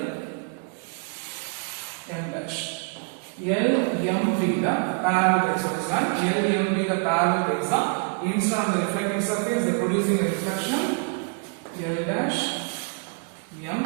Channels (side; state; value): left; quieter; 37.8 dB